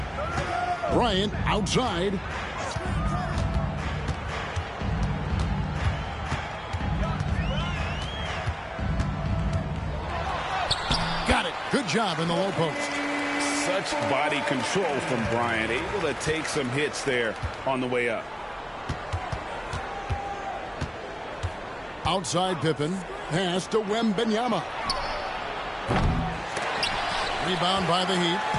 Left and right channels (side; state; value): both; identical; correlation 1.00